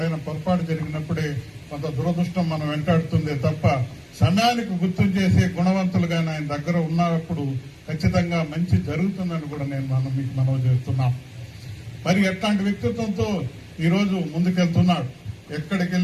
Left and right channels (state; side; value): identical; both; correlation 1.00